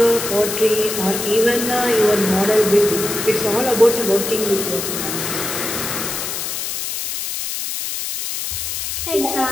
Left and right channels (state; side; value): noise; left; hiss, 4 dB below the sound